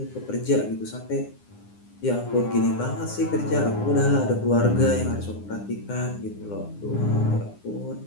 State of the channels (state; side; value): late; right; 9.8 ms